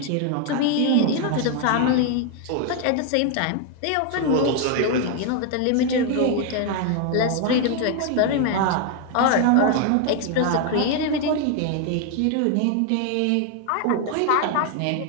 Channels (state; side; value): different; both; correlation 0.00